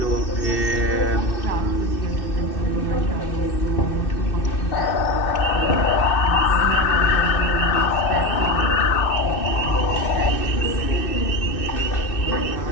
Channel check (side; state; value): right; late; 2.6 ms